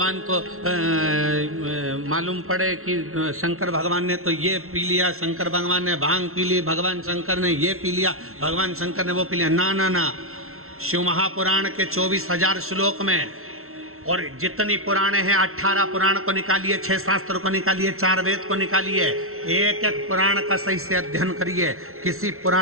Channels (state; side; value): late; left; 0.62 ms